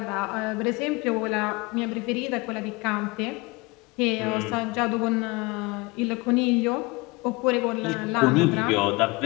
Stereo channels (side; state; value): right; quieter; 24.7 dB